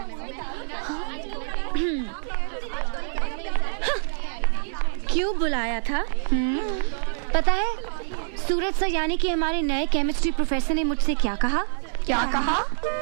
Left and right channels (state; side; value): silent; left; digital silence